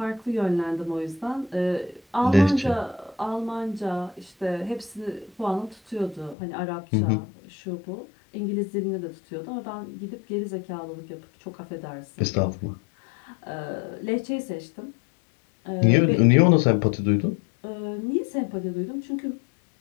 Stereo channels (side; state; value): right; drops out; at 6.4 s